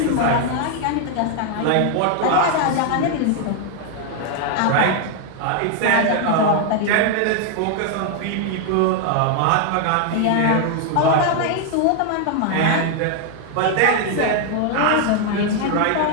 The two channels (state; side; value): different; both; correlation 0.00